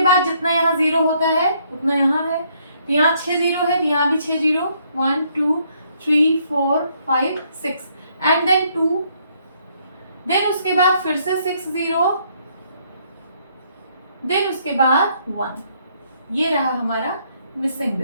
बाद जितना यहाँ 0 होता है उतना यहाँ है, तो यहाँ 6 0 है तो यहाँ भी 6 0, 1 2 3 4 5 6 एंड देन 2, देन उसके बाद फिर से 6 0, देन उसके बाद 1। ये रहा हमारा मिसिंग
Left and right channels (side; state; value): both; inverted; correlation -0.69